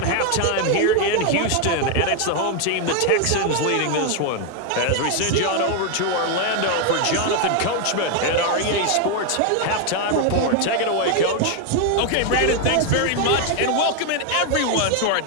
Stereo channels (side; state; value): both; different; correlation 0.01